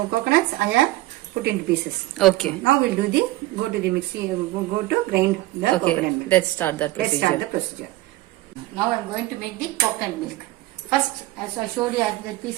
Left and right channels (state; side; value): quieter; left; 18.2 dB